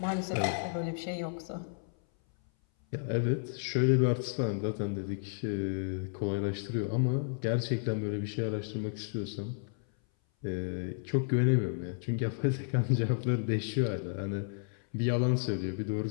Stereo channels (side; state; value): right; silent; 56 dB below the other